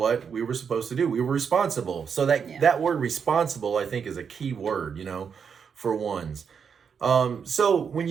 we were supposed to do. We were responsible. So that word responsible, I think, is a key word, for ones. So when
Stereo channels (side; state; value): left; quieter; 6.7 dB